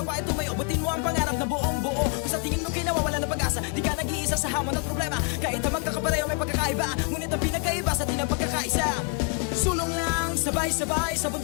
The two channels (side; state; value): right; quieter; 37.8 dB